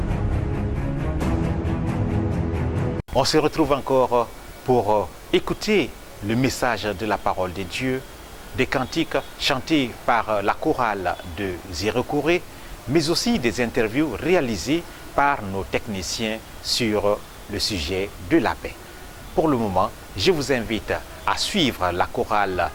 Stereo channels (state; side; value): identical; both; correlation 1.00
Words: On se retrouve encore pour écouter le message de la parole de Dieu, des cantiques chantés par la chorale de Zérekouré, mais aussi des interviews réalisées par nos techniciens sur le sujet de la paix. Pour le moment, je vous invite à suivre la chorale